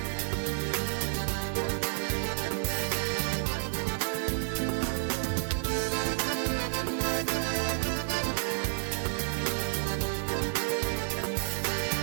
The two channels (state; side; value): silent; left; 57 dB below the other